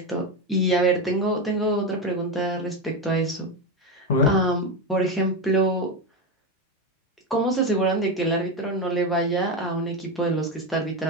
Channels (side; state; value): both; normal; correlation 0.14